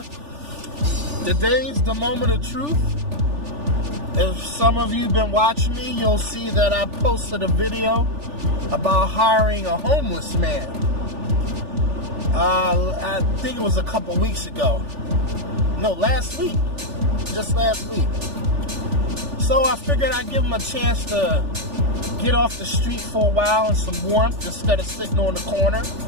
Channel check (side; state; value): left; late; 3.4 ms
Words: Today's the moment of truth. If some of you been watching me, you'll see that I posted a video about hiring a homeless man. I think it was a couple weeks ago. No, last week. Just last week. So I figured I'd give him a chance to get off the street for a while in some warmth instead of sitting on the corner